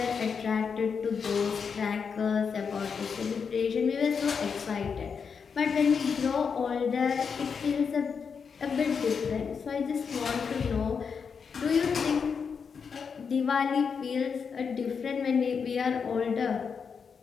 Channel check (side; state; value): right; quieter; 6.1 dB